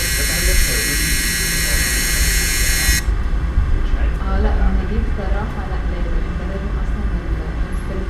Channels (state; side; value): identical; both; correlation 1.00